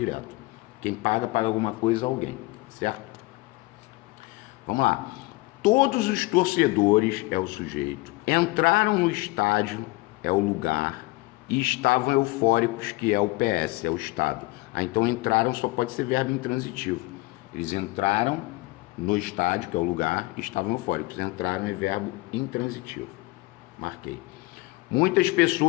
Quem paga, paga alguma coisa a alguém, certo? Vamos lá. Todos os torcedores, é o sujeito, entraram no estádio, é o lugar, e estavam eufóricos, que é o PS, é o estado. Então, entraram só pode ser verbo intransitivo. Eles entraram no estádio, que é o lugar, e estavam eufóricos. Entraram é verbo intransitivo. Marquei. Muitas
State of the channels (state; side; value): quieter; right; 21.8 dB